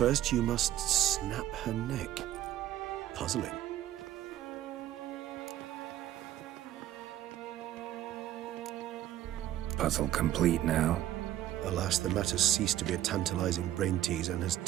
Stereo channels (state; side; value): quieter; left; 13.1 dB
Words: you must snap her neck. Puzzling. Puzzle complete now. Alas, the matter's ceased to be a tantalizing brain tease and has